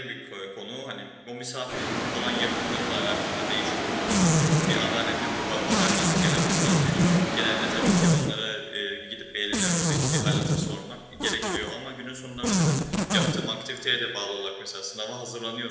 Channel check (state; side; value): identical; both; correlation 1.00